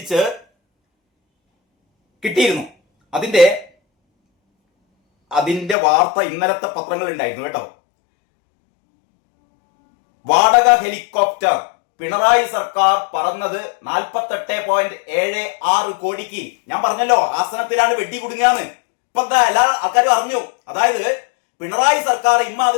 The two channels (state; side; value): drops out; right; at 5.8 s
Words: കിട്ടിയിരുന്നു. അതിന്റെ വാർത്ത ഇന്നലത്തെ പത്രങ്ങൾ ഉണ്ടായിരുന്നു കേട്ടോ. വാടക ഹെലികോപ്റ്റർ പിണറായി സർക്കാർ പറന്നത് 48.76 കോടിക്ക്. ഞാൻ പറഞ്ഞല്ലോ ആസനത്തിലാണ് വെടി കുടുങ്ങിയാന്ന്. ഇപ്പൊ എന്താ എല്ലാ ആൾക്കാരും അറിഞ്ഞു. അതായത് പിണറായി സർക്കാർ